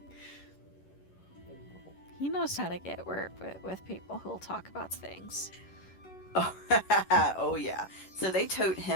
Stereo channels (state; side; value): late; right; 11 ms